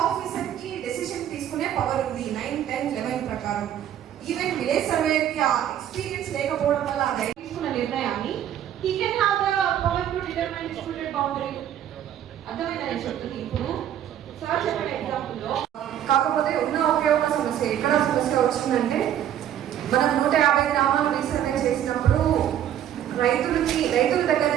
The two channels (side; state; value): left; quieter; 10.7 dB